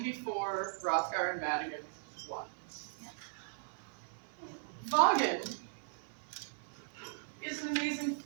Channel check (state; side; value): silent; left; 52 dB below the other